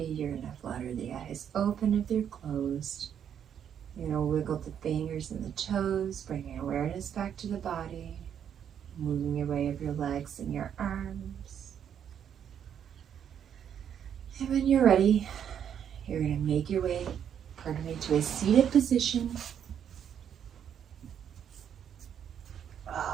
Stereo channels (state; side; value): quieter; left; 8.8 dB